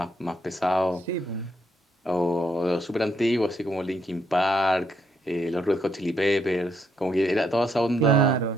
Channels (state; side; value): normal; both; correlation 0.75